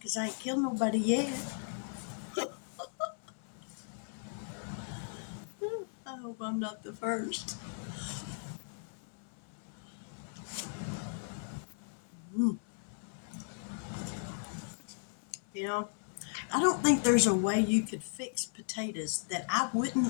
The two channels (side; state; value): right; silent; 54 dB below the other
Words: I ain't killed nobody yet. I hope I'm not the first. You know, I don't think there's a way you could fix potatoes that I